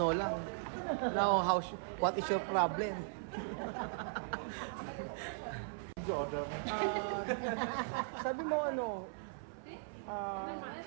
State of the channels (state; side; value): silent; left; 52 dB below the other